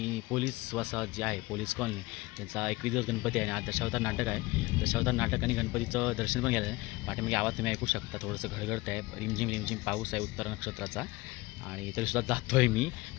पोलीस वसाहत जी आहे, पोलीस कॉलनी, त्यांचा 21 दिवस गणपती आहे आणि आज दशावतार नाटक आहे. दशावतार नाटक आणि गणपतीचं दर्शन पण घ्यायला आहे. पाठीमागे आवाज तुम्ही ऐकू शकता, थोडंसं घडघडत आहे, रिमझिम रिमझिम पाऊस आहे उत्तर नक्षत्राचा. आणि तरीसुद्धा जातो आहे मी,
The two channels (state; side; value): quieter; right; 21.2 dB